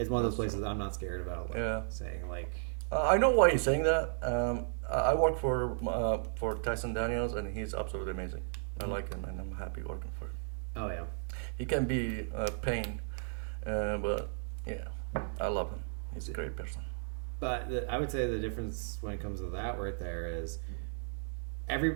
one of those places I'm not scared about. Like, saying like. I know why he's saying that. I work for Tyson Daniels, and he's absolutely amazing. I like him, and I'm happy working for him. Oh yeah. He can be a pain, but yeah, I love him. He's a great person. But I would say the difference when it comes to that right there is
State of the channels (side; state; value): left; silent; 55 dB below the other